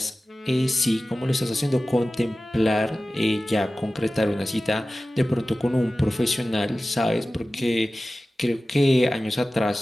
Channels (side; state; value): both; normal; correlation 0.96